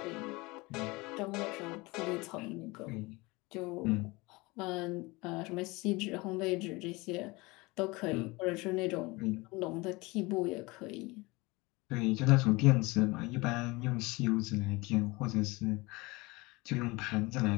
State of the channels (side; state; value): right; quieter; 23.7 dB